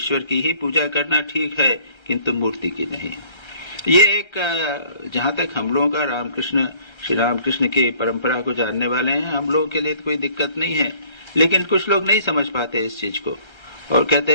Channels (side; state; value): right; late; 1.3 ms